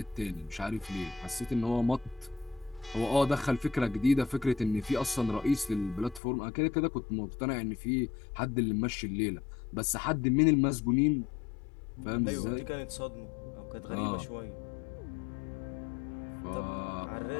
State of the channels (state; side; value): drops out; right; at 6.2 s